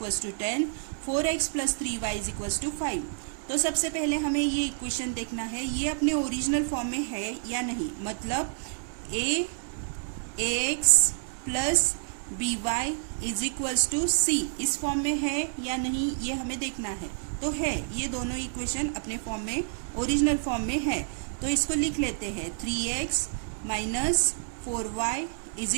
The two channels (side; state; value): left; silent; digital silence